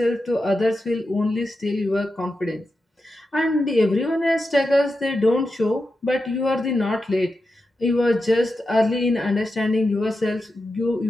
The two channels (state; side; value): normal; both; correlation 0.89